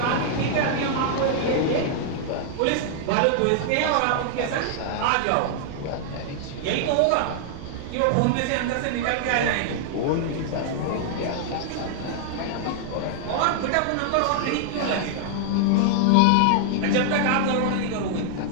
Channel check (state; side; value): different; both; correlation -0.01